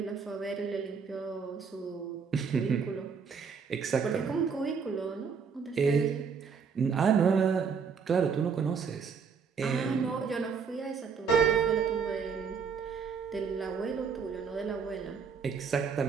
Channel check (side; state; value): left; quieter; 6.0 dB